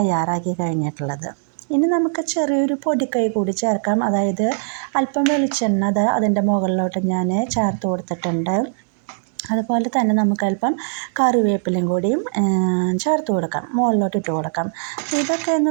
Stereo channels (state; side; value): silent; left; digital silence